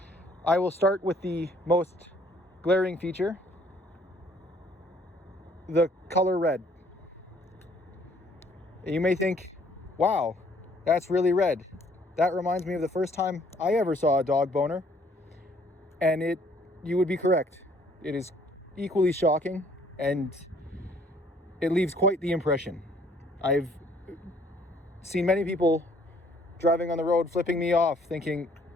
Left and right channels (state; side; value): normal; both; correlation 0.61